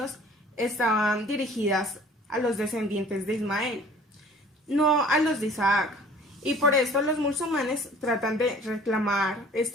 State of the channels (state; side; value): normal; both; correlation 0.50